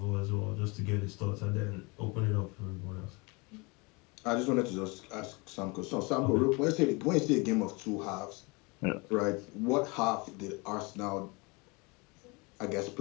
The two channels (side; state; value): right; quieter; 27.8 dB